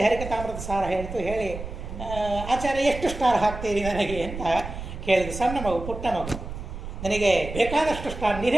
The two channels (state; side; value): noise; right; rumble, 9 dB below the sound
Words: ಹರಿಕಥಾಮೃತ ಸಾರ ಹೇಳಿತು, ಹೇಳಿ ಆಚಾರ್ಯ ಎಷ್ಟು ಸ್ಟಾರ್ ಹಾಕ್ತೀರಿ ನನಗೆ ಅಂತ ಕೇಳಿದ್ರು. ಸಣ್ಣ ಮಗು, ಪುಟ್ಟ ಮಗು, ನನಗೆ ಬೇಕಾದಷ್ಟು ಸ್ಟಾರ್